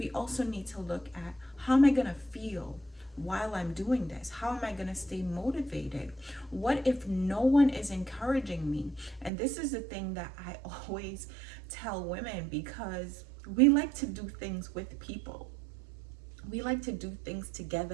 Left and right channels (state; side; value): drops out; left; at 9.3 s